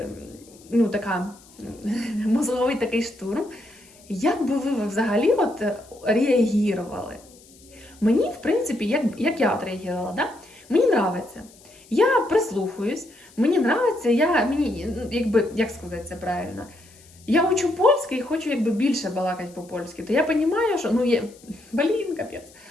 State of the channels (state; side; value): noise; left; hiss, 25 dB below the sound